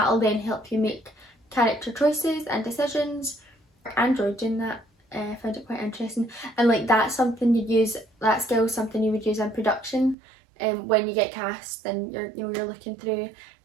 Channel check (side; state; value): left; drops out; at 10.2 s